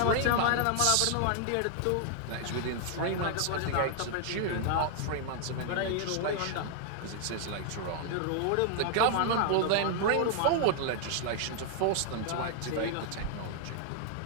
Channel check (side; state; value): both; different; correlation 0.00